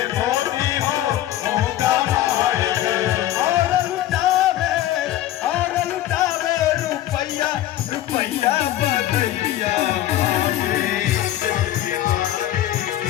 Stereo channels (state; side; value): quieter; right; 13.4 dB